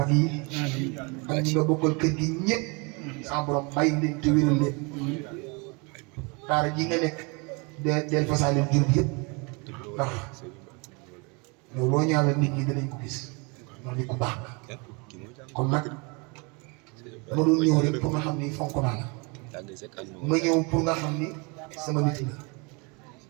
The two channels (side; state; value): left; quieter; 30.5 dB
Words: yi ak ñi nga bokkal kër gi ñëpp sama borom bàyyi leen te wéral leen daara ji nga nekk del fasaale jur gi yëpp ndax yow loo ñaanal nit ñi danañ ko gis ndax nit ku baax la kon nag ma doon ñëw rek pour nga xam ni fonk naa la ma ñëw pour nga xam ni sama nit la